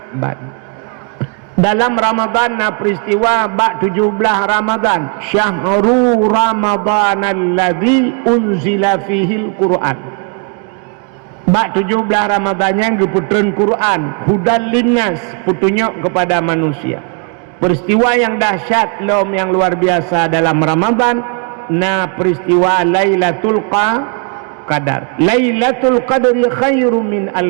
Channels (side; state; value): left; quieter; 38.2 dB